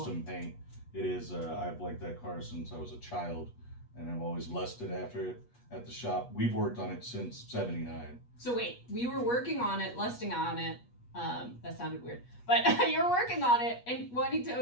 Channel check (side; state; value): right; late; 8.3 ms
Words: paint. It is. I've liked that car since I was a child, and I've always lusted after it at the shop. We've worked on it since '79. So wait, we were working on it, lusting on it. That sounded weird. But you're working on it and wanting to